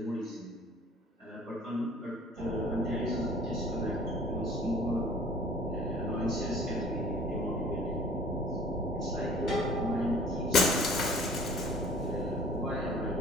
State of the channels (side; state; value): both; normal; correlation 0.50